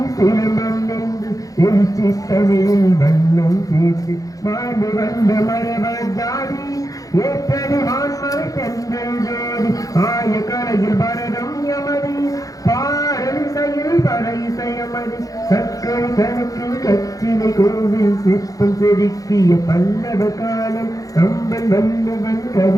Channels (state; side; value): late; right; 0.17 ms